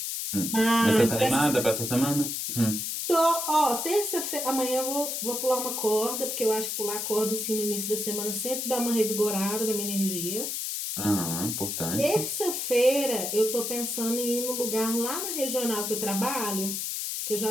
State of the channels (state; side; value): noise; left; hiss, 3 dB below the sound